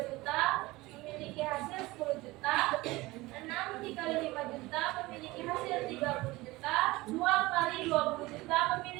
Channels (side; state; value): left; quieter; 20.4 dB